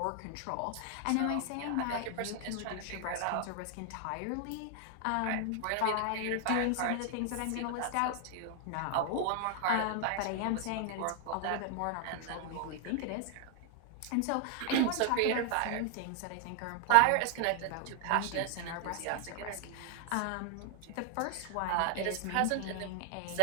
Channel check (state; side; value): different; both; correlation 0.00